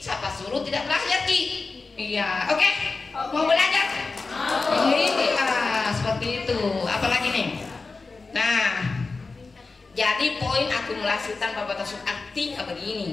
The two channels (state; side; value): quieter; right; 4.0 dB